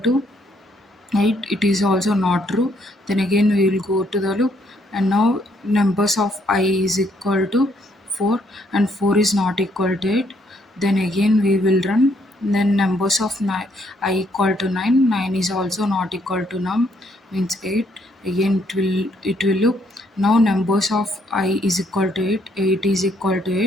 8, it is also not true, then again we will go to the loop, and now numbers of I is equal to 4, and 4 is not equal to 8, then again we will run, then numbers of I equal to 9, 9 is also not equal to num, means 8, again it will loop. Now numbers of I is equal to 8, 8 is equal to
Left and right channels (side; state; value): both; normal; correlation 0.70